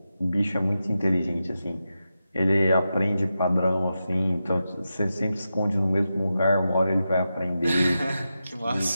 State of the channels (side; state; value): both; inverted; correlation -0.90